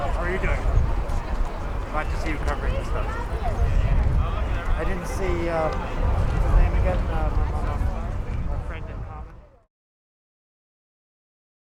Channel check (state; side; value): identical; both; correlation 1.00